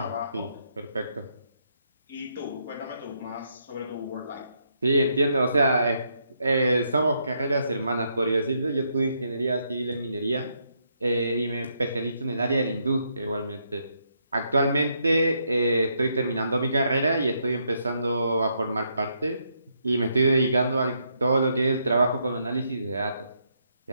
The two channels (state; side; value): inverted; both; correlation -0.77